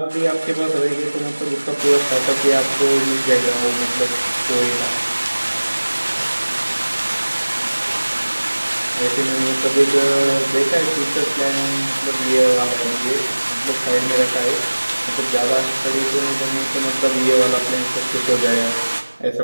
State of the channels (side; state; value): both; inverted; correlation -1.00